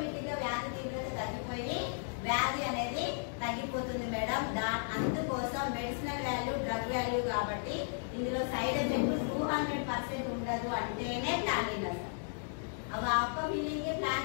గా వ్యాధి తీవ్రత తగ్గిపోయి వ్యాధి అనేది తగ్గిపోతుంది మేడం. అందుకోసం మెడిసినల్ వాల్యూ డ్రగ్ వాల్యూ కాబట్టి ఇందులో సైడ్ ఎఫెక్ట్ 200% ఉండదు అంటేనే ప్లాన్ విన్నారు. అవి అప్ప ఫీలింగ్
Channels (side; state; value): right; silent; digital silence